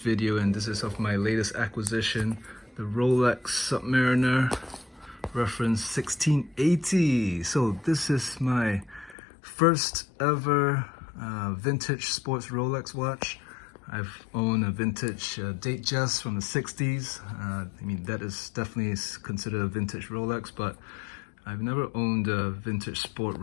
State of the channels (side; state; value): right; drops out; at 9.2 s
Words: and this is of my latest acquisition, the Rolex Submariner reference 1680. So this is my first ever vintage sports Rolex watch. I've owned a vintage Datejust from the 60s. I mean, that is definitely considered a vintage Rolex, but I've never owned a vintage sport